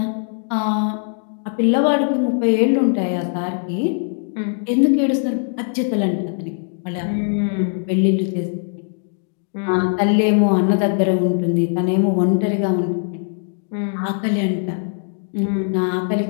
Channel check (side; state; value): right; silent; 65 dB below the other